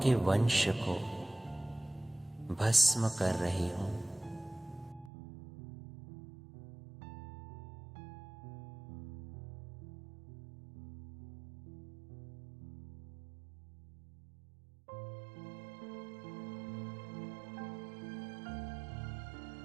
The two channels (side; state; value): left; drops out; at 5.1 s